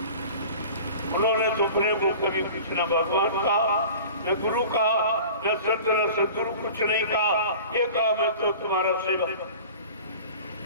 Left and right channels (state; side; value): inverted; both; correlation -0.40